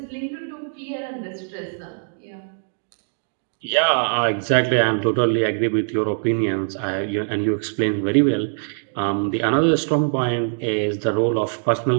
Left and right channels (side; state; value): left; silent; digital silence